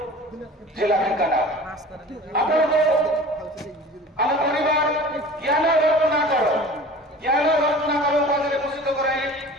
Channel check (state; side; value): normal; both; correlation 0.41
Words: ଜିଲ୍ଲା ଢେଙ୍କାନାଳ ଆପଣଙ୍କୁ ଆମ ପରିବାର ଜ୍ଞାନ ରତ୍ନାକର ଉପାଧିରେ ଭୂଷିତ କରାଇ